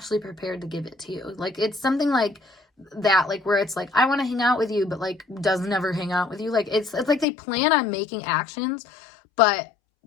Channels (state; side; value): drops out; right; at 7.2 s